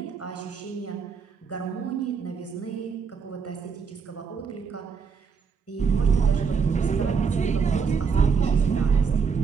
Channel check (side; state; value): left; quieter; 5.8 dB